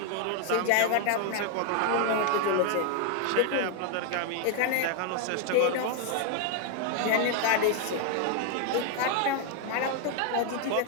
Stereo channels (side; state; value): both; different; correlation 0.00